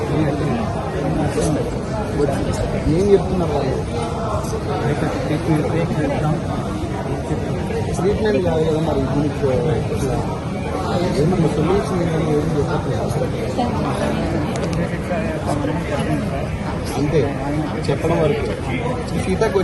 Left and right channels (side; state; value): both; identical; correlation 1.00